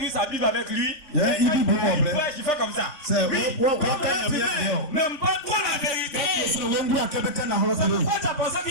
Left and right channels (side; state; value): right; late; 3.5 ms